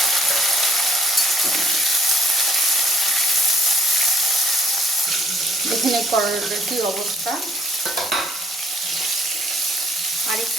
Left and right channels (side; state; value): both; normal; correlation 0.63